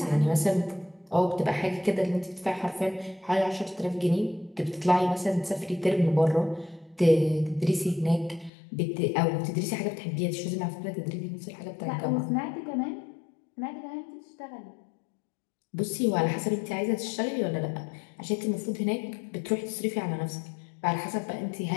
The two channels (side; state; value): right; drops out; at 8.5 s